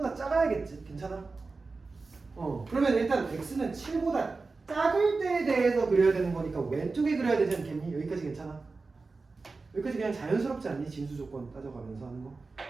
작아야겠지. 괜찮아? 그러면 일단 x는 7보다 작을 때에 대해서 그려야 되는 거니까 왼쪽에 그려야 되지 않겠니? 여기까지 괜찮아? 여기까지 그냥 자연스럽지 않니? 진수 조건 따져가면서 하는 거.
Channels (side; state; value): left; quieter; 4.0 dB